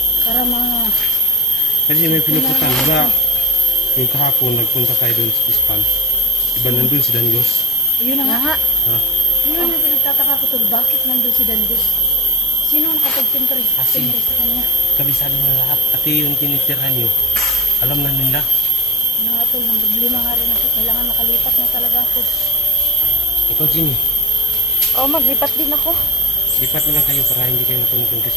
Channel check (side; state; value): both; normal; correlation 0.45